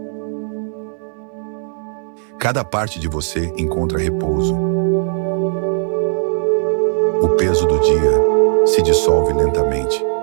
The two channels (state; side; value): silent; left; 58 dB below the other